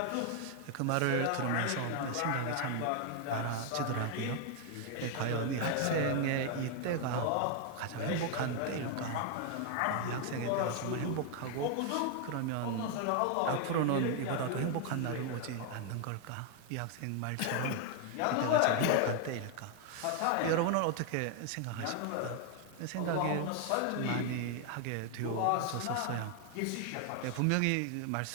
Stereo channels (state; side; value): different; both; correlation 0.00